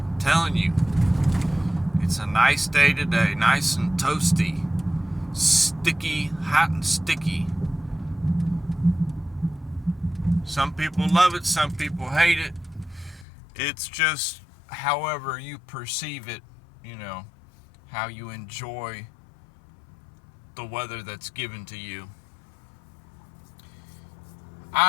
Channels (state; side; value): drops out; right; at 13.2 s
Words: telling you, it's a nice day today, nice and toasty, sticky, hot and sticky. Some people love it, some people hate it. It's just however you perceive it, how you enjoy the weather that's given to you.